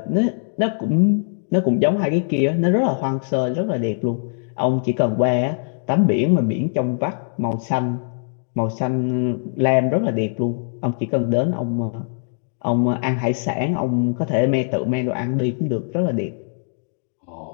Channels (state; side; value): silent; right; digital silence